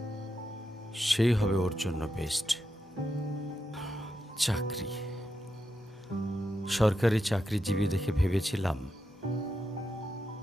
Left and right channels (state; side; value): normal; both; correlation 0.86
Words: সেই হবে ওর জন্য বেস্ট। চাকরি, সরকারি চাকরিজীবী দেখে ভেবেছিলাম